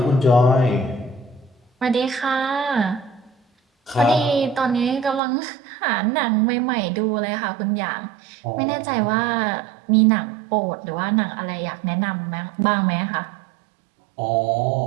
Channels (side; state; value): left; drops out; at 5.2 s